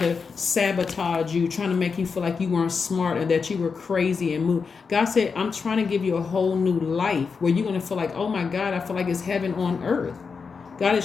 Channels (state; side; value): quieter; right; 5.3 dB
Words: sabotage you, trying to make you feel like you weren't smart and that you were crazy and move. God said, I'm trying to give you a whole new life where you're going to feel like, oh my God, I feel like it's heaven on earth. God